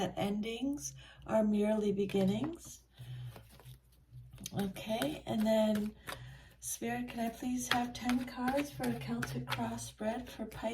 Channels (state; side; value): identical; both; correlation 1.00